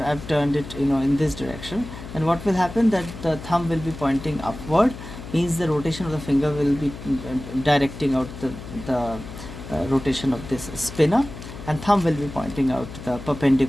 turned it in this direction, then what will happen, that the thumb will be pointing upward, means the rotation of the finger will be directing out the rotation of this spinner, and thumb will be pointing out the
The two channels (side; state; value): left; noise; hum, 12 dB below the sound